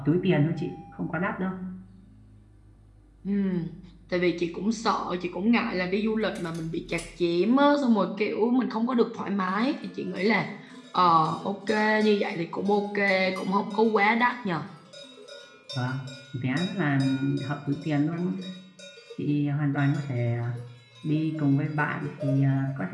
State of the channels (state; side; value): identical; both; correlation 1.00